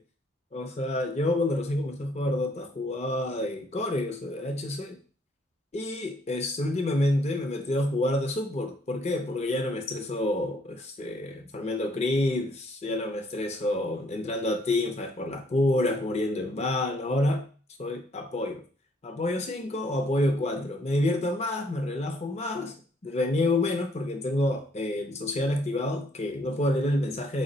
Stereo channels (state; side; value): normal; both; correlation 0.66